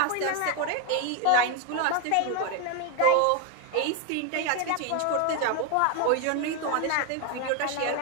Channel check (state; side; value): different; both; correlation 0.01